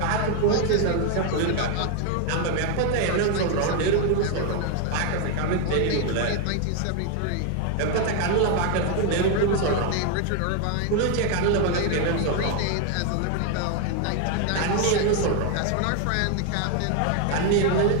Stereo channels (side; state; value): both; different; correlation 0.01